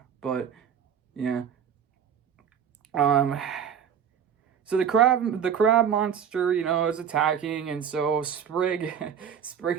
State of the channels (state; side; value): quieter; left; 8.2 dB